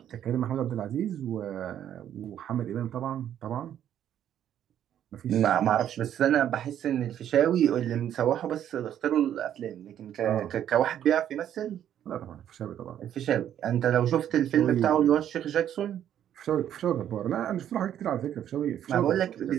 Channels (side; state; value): left; quieter; 10.4 dB